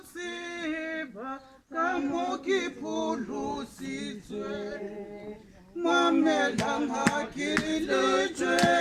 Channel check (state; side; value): identical; both; correlation 1.00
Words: ka mo ke pholositswe mamelang ha ke le